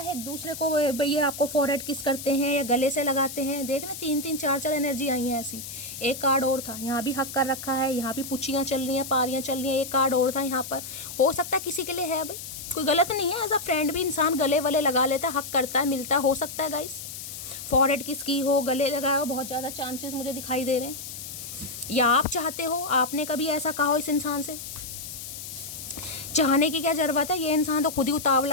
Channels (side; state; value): left; noise; hiss, 10 dB below the sound